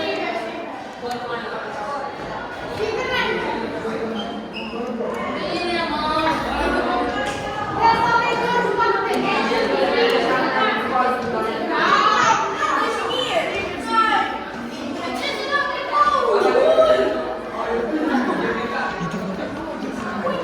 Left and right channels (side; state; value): both; identical; correlation 1.00